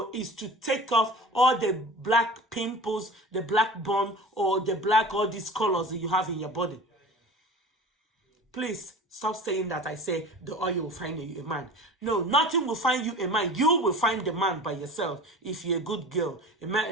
is to take off all the black pimples, the black bone, or the black, all these colors that you have in your body. Please stop saying that I say the oil will find you a man. No, nothing will find you a man. You will find the man by yourself. If you're a good girl, a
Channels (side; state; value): both; normal; correlation 0.37